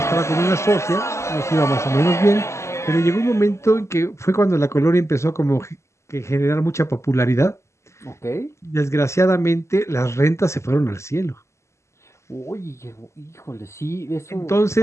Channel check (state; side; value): late; right; 0.13 ms